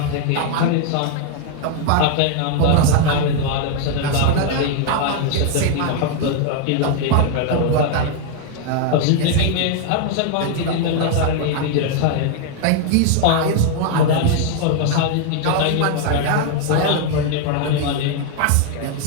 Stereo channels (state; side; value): different; both; correlation 0.00